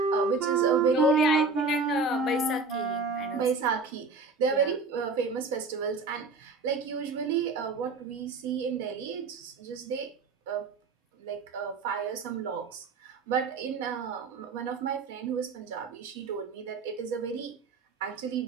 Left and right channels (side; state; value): left; quieter; 4.1 dB